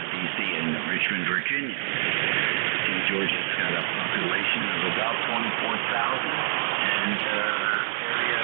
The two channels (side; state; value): left; silent; digital silence